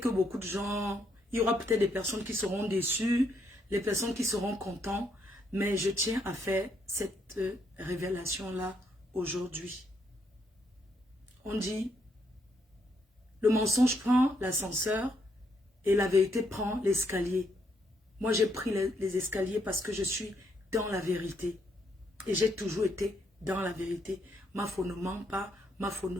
beaucoup de gens, il y aura peut-être des personnes qui seront déçues, les personnes qui seront contentes, mais je tiens à faire cette révélation-là aujourd'hui. On dit, le mensonge prend l'ascenseur et la vérité prend l'escalier. Moi, j'ai pris les escaliers parce que je suis dans la vérité. Et j'ai toujours été dans la vérité. Ma foi ne ment pas, ma foi ne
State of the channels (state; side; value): normal; both; correlation 0.74